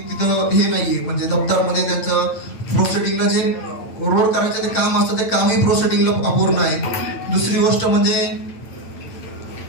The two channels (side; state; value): right; late; 9.0 ms